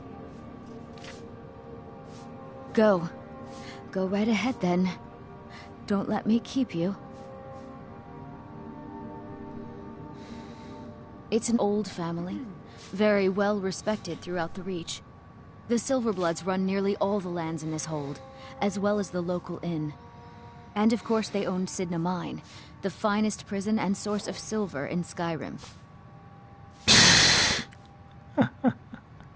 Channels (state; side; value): identical; both; correlation 1.00